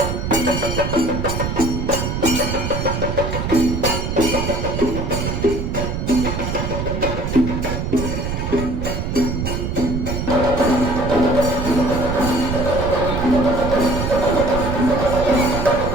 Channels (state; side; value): noise; right; rumble, 2 dB below the sound